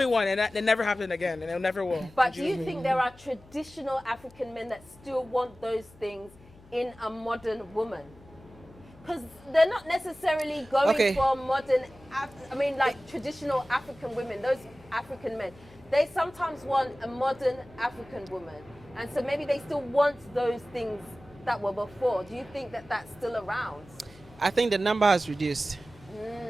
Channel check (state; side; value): noise; left; hum, 24 dB below the sound